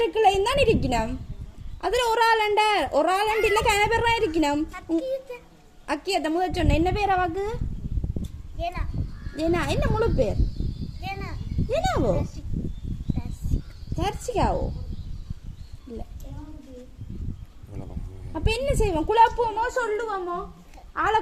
தான் இருக்கணும். அதுல ஒரு ஆள் இல்ல கன பேர் தான் இருக்கணும். அக்கியத்த முதல் சொன்ன என்ன பேர் அவாக்கு? ஏனா என்ன முழு பேர்? ஏனாவோ? தர்சிகாவோ? இல்ல. அப்ப என்ன செய்வோம்? குழப்புவோமோ சொல்லுவோமோ? ஆளை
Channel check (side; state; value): both; identical; correlation 1.00